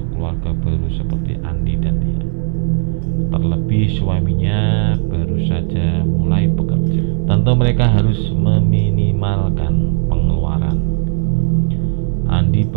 keluarga baru seperti Andi dan Tia. Terlebih suaminya baru saja mulai bekerja. Tentu mereka harus meminimalkan pengeluaran. Andi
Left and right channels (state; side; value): silent; left; 57 dB below the other